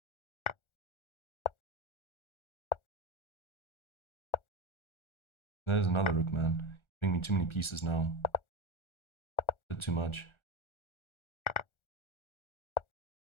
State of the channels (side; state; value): right; late; 1.4 ms